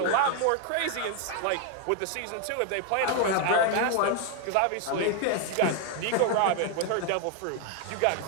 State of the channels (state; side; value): different; both; correlation 0.01